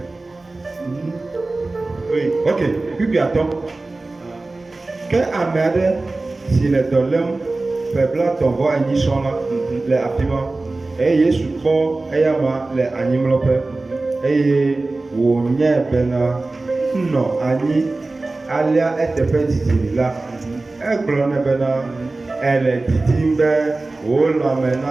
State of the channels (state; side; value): quieter; left; 3.2 dB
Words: Oui. Ok, kpikpi atɔ. Ke ame aɖe si le dɔ lém peblatɔ vɔ enyi sɔŋ la le afi ma eye Yesu kpɔ eyama le anyimlɔƒe eye wònye bena nɔ anyi. Alia eteƒe didi la, egblɔ ne bena ele didim be wò lãme